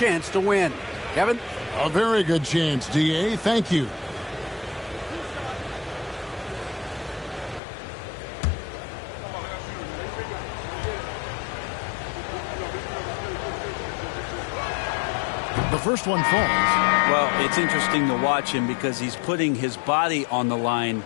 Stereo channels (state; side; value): drops out; right; at 7.6 s